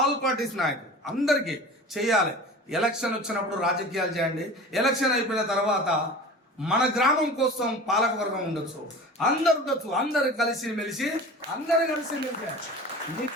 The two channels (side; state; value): both; normal; correlation 0.36